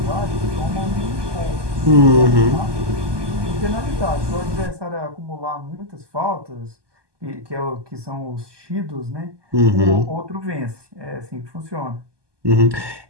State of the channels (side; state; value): left; late; 1.2 ms